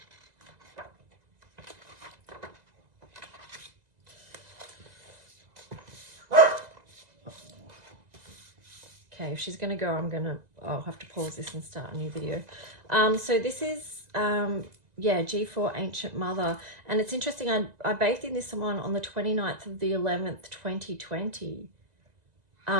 Okay, if she's going to go, I'll have to pause this and start a new video. So this is, yeah, G4 Ancient Mother. And it's interesting, I bathed in this one on the 29th of the 11th, 2020.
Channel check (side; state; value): left; late; 2.0 ms